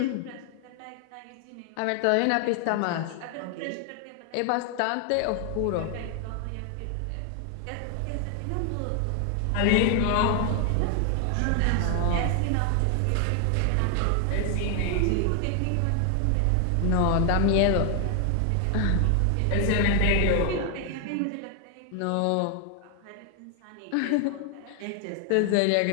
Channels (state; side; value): different; both; correlation 0.00